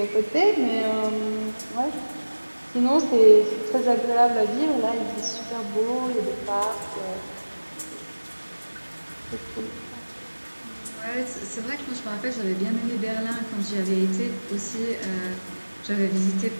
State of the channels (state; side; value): inverted; both; correlation -1.00